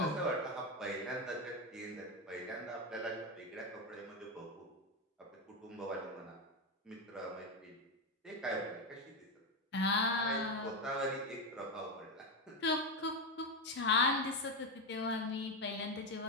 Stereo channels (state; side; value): normal; both; correlation 0.11